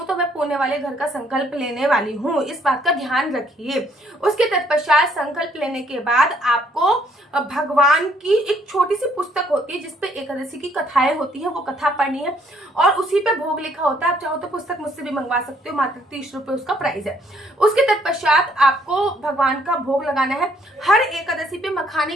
तो मैं पुणे वाले घर का संकल्प लेने वाली हूँ। इस बात का ध्यान रखिए। उसके तत्पश्चात संकल्प लेने के बाद आपको भगवान की एक छोटी सी पुस्तक होती है जिसपे एकादशी की कथाएं होती है, वो कथा पढ़नी है और उसी पे भोग लिखा होता है। आप चाहो तो पुस्तक मुझसे भी मंगवा सकते हो, मात्र 30 रुपए उसका प्राइस है। उसके तत्पश्चात आपको भगवान का भोग लगाना है। हर एकादशी पे मखाने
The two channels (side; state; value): both; normal; correlation 0.66